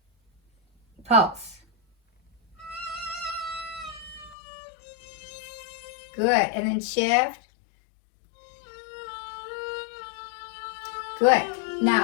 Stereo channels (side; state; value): right; drops out; at 4.4 s